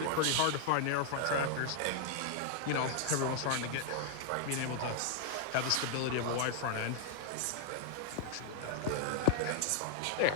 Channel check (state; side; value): different; both; correlation 0.00